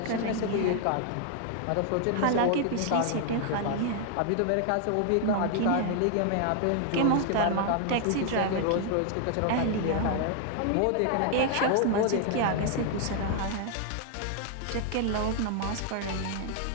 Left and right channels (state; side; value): different; both; correlation 0.00